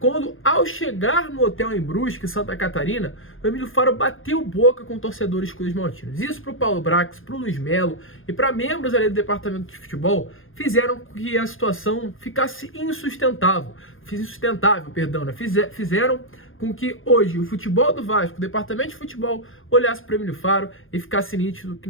ao chegar no hotel em Brusque, Santa Catarina, o Emílio Faro bateu boca com torcedores cruzmaltinos. Isso para o Paulo Brax, para o Luiz Melo e para membros ali do departamento de futebol fizeram com que a situação ficasse insustentável. Fizeram com que hoje o futebol do Vasco, o departamento de futebol, olhasse para o Emílio Faro e ficasse nítido que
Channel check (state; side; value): late; right; 0.59 ms